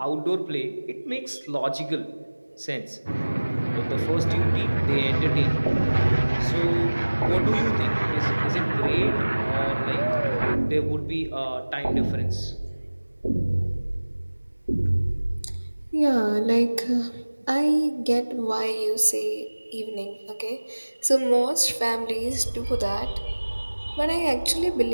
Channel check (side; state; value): both; inverted; correlation -1.00